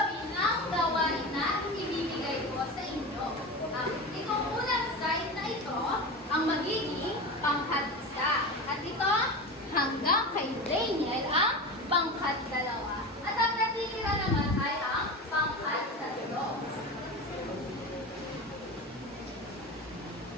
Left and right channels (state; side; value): normal; both; correlation 0.26